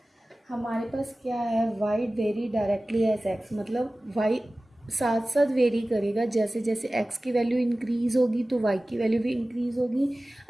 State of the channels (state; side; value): normal; both; correlation 0.97